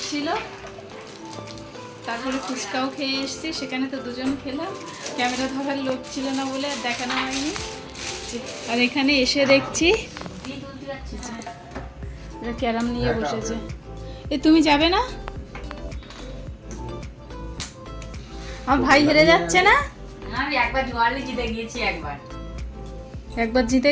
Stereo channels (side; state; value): both; identical; correlation 1.00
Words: ছিল, তারপরে ফুচকাও খেয়ে এসেছি, সেখানে তো দুজন খেলাম, ক্যামেরা ধরার লোক ছিল না বলে আর দেখানো হয়নি। আর এখানে এসে দেখছি ক্যারাম নিয়ে বসেছে। এ তুমি যাবে না? আমার ভাই হেরে যাচ্ছে না? আমি একবার জোয়ারে জিতে গিয়েছি, একবার জিতে